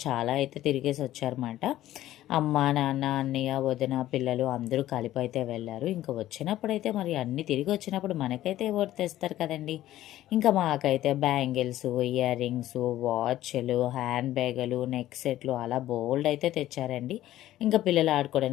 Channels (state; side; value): quieter; right; 14.0 dB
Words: చాలా అయితే తిరిగేసి వచ్చారన్నమాట. అమ్మ, నాన్న, అన్నయ్య, వదిన, పిల్లలు అందరూ కలిపి అయితే వెళ్ళారు. ఇంకా వచ్చినప్పుడైతే మరి అన్నీ తిరిగి వచ్చినప్పుడు మనకైతే ఓటు తెస్తారు కదండి. ఇంకా మాకైతే బ్యాంగిల్స్, ఇయర్ రింగ్స్, వాచ్లు, హ్యాండ్ బ్యాగులు, నెక్ సెట్లు అలా బోల్డ్ అయితే తెచ్చారండి. ఇంకా పిల్లలు